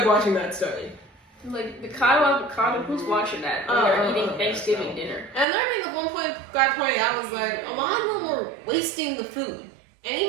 watching Matt Stone. Like Mikado Avocado, who's watching that when they're eating Thanksgiving dinner? And I mean, at one point, guy pointed out, was like, a lot of them were wasting the food. And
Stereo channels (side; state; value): left; drops out; at 5.5 s